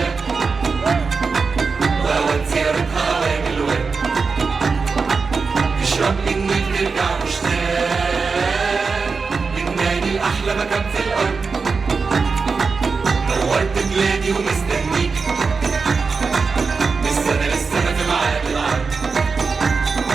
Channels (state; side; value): quieter; left; 4.8 dB